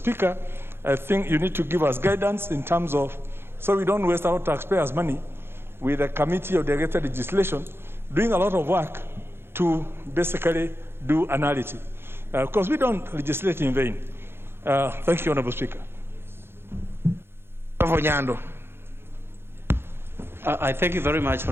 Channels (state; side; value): late; left; 0.11 ms